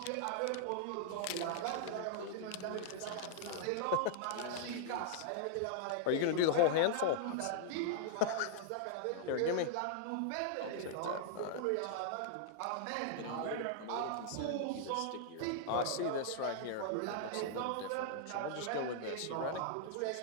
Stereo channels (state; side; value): different; both; correlation -0.01